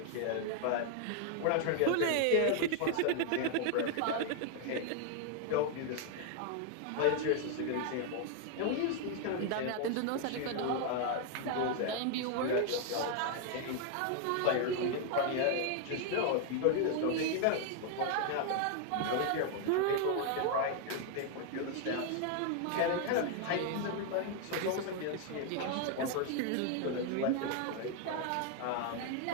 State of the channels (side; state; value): both; different; correlation 0.00